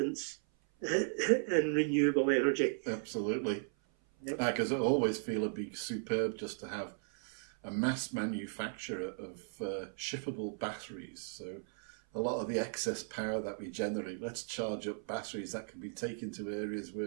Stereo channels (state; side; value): silent; left; 53 dB below the other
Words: in renewable energy. Absolutely. Because I always feel it'd be superb just to have a mass manufacture of shippable batteries. So a lot of the excess power that we generate, let's charge up batteries that can be taken to areas